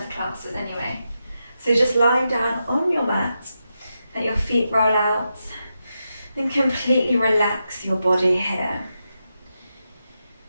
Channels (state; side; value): inverted; both; correlation -0.87